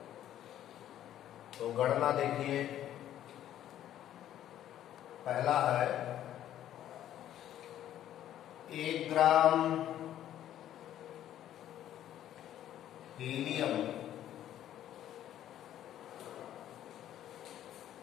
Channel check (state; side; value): quieter; right; 11.7 dB